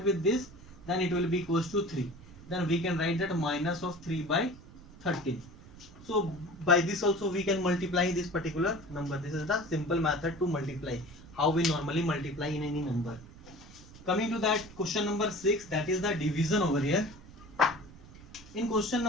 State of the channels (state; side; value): noise; right; rumble, 19 dB below the sound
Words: with this, then it will be equals to 3. Then we can write that minus of 3 by 13. So by this also we can multiply this particular number. This is the simple method to multiply, how we normally multiply in any number. Coming to that question number 6, that is the division over here. In question